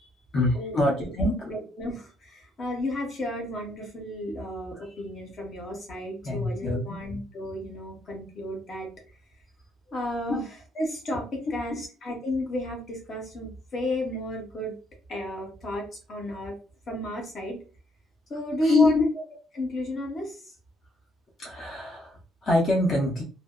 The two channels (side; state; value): both; normal; correlation 0.72